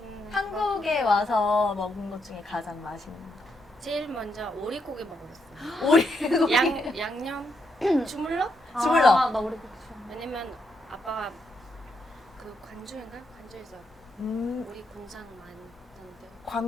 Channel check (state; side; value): normal; both; correlation 0.79